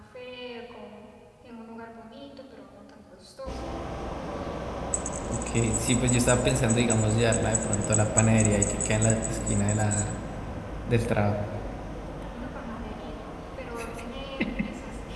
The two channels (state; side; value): identical; both; correlation 1.00